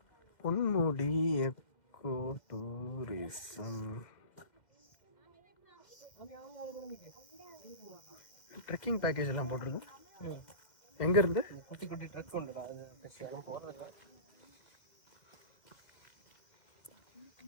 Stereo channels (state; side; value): late; right; 2.1 ms